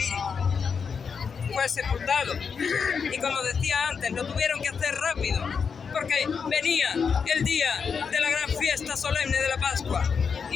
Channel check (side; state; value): right; quieter; 6.0 dB